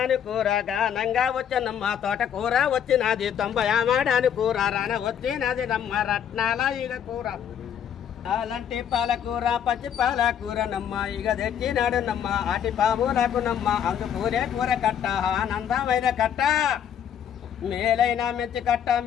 కూర గానంగా వచ్చనమ్మ తోట కూర వచ్చినది 90 మాడాని కూర రాన వచ్చినది నమ్మ రత్నాల ఇక కూర అలాంటి పాలకూర పచ్చి పాలకూర నమ్మ ఇక తెచ్చినాడు నమ్మ అటి పాములకు నమ్మ అందుకూరే కూర కట్ట ఆనందమైన కట్ట మేలైన మెచ్చి కట్ట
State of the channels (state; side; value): quieter; right; 9.0 dB